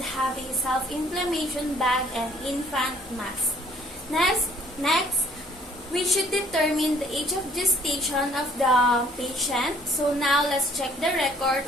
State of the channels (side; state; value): both; normal; correlation 0.59